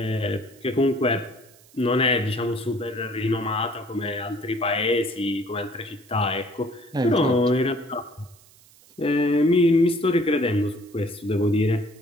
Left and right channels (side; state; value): right; noise; hiss, 27 dB below the sound